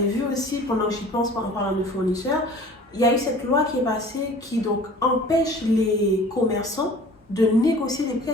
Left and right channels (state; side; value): normal; both; correlation 0.45